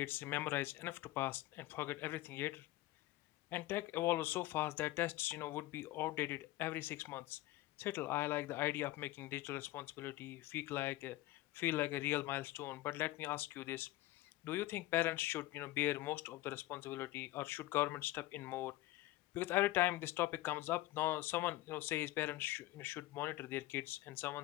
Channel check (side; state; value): right; quieter; 17.0 dB